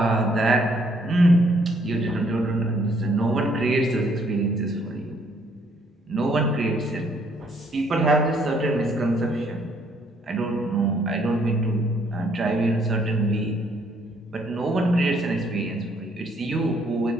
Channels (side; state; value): both; normal; correlation 0.67